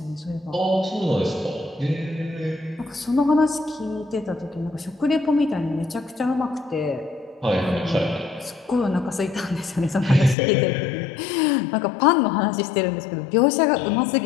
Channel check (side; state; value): right; drops out; at 10.4 s